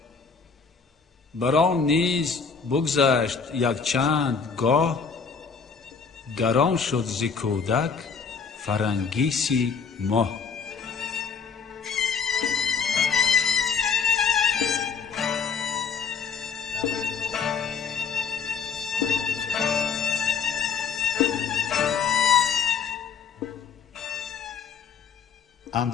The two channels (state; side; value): quieter; right; 5.8 dB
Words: بران نیز بگذشت یک چند گاه، گران شد ز کودک فرنگیسی ماه.